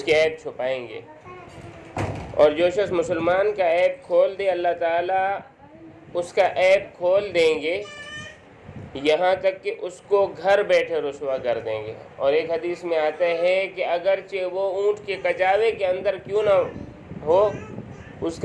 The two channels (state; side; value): identical; both; correlation 1.00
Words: کے عیب چھپائیں گے، اور جو شخص مسلمان کا عیب کھول دے، اللہ تعالیٰ اس کا عیب کھول دیں گے، یہاں تک کہ اس کو گھر بیٹھے رسوا کر دیں گے۔ اور ایک حدیث میں آتا ہے کہ اگرچہ وہ اونٹ کے کچاوے کے اندر کیوں نہ ہو، اس